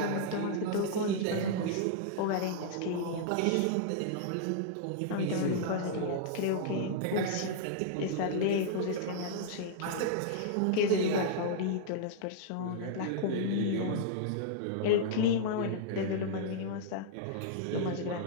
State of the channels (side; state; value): both; different; correlation -0.01